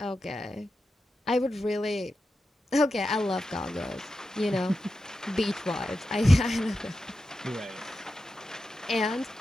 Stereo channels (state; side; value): normal; both; correlation 0.90